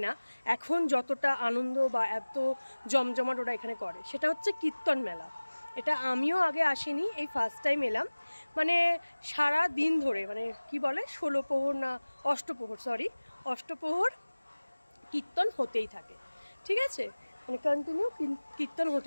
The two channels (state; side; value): inverted; both; correlation -1.00